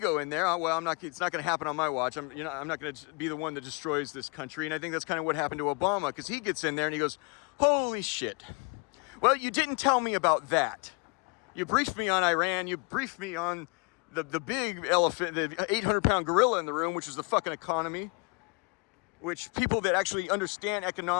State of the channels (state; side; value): quieter; right; 31.5 dB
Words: in there. Well, it's not going to happen on my watch. I'm not going to be the one that destroys this country. And I think that's kind of what happened to Obama, because he gets in there and he goes, holy shit. Well, you didn't tell me about that. You briefed me on Iran. You briefed me on the big elephant, the 800-pound gorilla in the room, which is the fucking economy, which people that actually understand